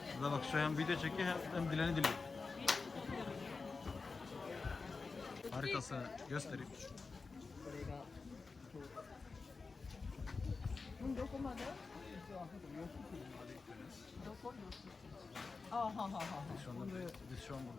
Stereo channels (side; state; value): right; quieter; 4.3 dB